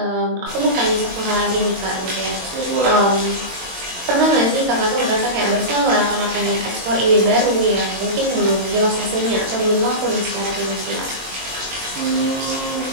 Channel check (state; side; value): late; left; 22 ms